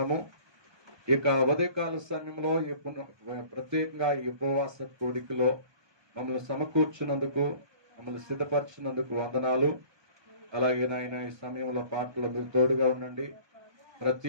ఇక ఉదయకాల సమయంలో ప్రత్యేకంగా ఈ ఉపవాస కోడికలో మమ్మల్ని సమకూర్చున్నందుకు, మమ్మల్ని సిద్ధపరిచినందుకు వందనాలు. అలాగే నాయన ఈ సమయంలో పాటలు మీరు తోడుగా ఉండండి.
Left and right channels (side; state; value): left; late; 1.2 ms